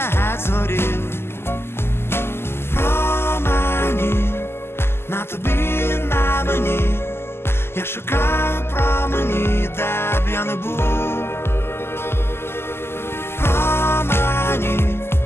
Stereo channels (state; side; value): late; right; 0.12 ms